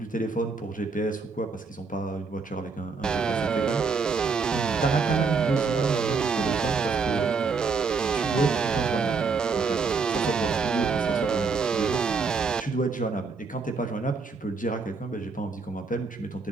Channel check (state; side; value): quieter; left; 4.7 dB